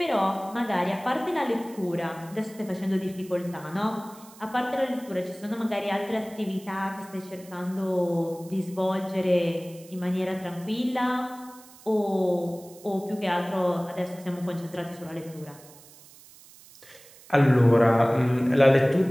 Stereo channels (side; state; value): right; noise; hiss, 22 dB below the sound